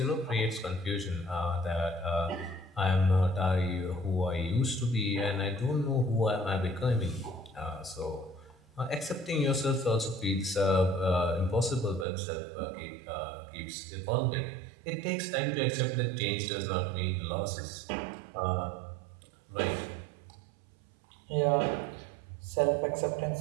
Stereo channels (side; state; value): left; drops out; at 12.1 s